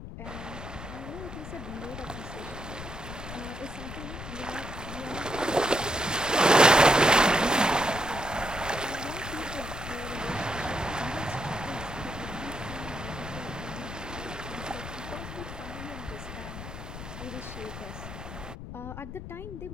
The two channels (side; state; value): left; noise; rumble, 9 dB below the sound